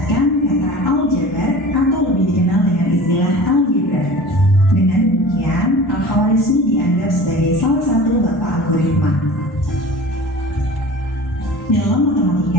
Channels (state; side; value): normal; both; correlation 0.39